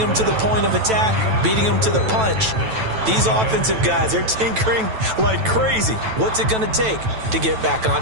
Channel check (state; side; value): late; left; 9.1 ms